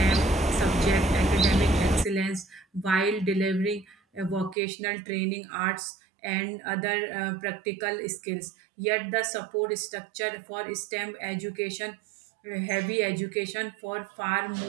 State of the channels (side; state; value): left; drops out; at 4.5 s